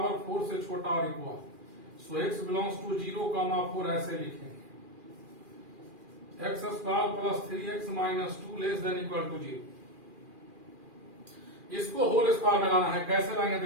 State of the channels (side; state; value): left; late; 2.4 ms